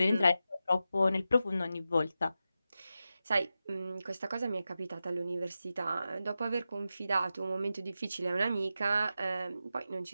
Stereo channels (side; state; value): both; inverted; correlation -0.91